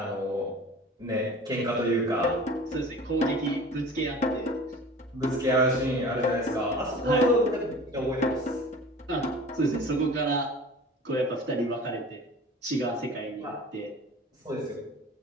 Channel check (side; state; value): both; normal; correlation 0.41